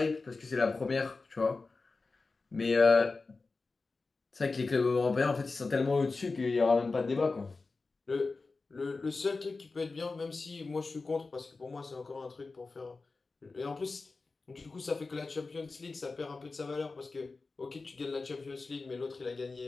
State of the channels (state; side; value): quieter; right; 3.9 dB